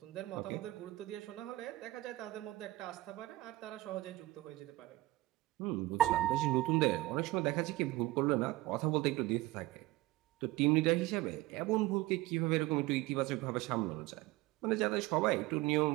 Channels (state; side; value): quieter; left; 18.6 dB